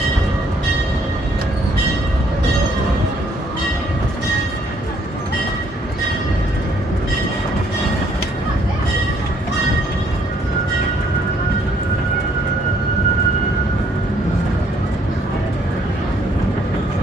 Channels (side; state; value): both; normal; correlation 0.66